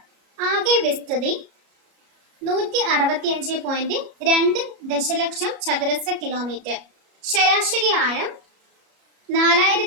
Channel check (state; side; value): late; left; 33 ms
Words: ആകെ വിസ്തൃതി 165.2 ദശലക്ഷം ചതുരശ്ര കിലോമീറ്റർ, ശരാശരി ആഴം